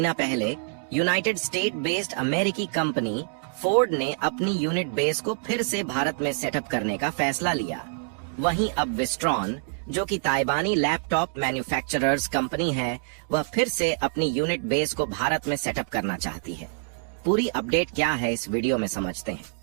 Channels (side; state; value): left; silent; digital silence